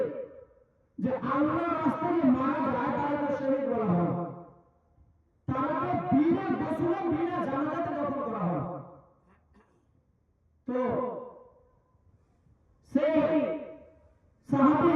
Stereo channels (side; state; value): both; identical; correlation 1.00